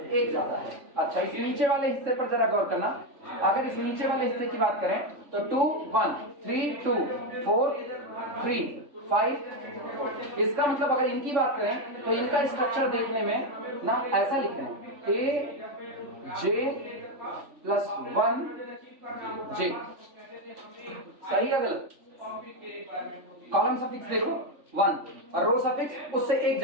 1 ज्यादा है। अच्छा, इस नीचे वाले हिस्से पर जरा गौर करना। अगर इस नीचे वाले हिस्से की बात करें तो 2 1 3 2 4 3 5, इसका मतलब अगर इनकी बात करें तो इनका स्ट्रक्चर देखने में ना ऐसा लिख रहे हैं aj+1 j। सही है गलत? कॉलम सफिक्स देखो 1 और रो सफिक्स उससे 1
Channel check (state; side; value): late; left; 3.5 ms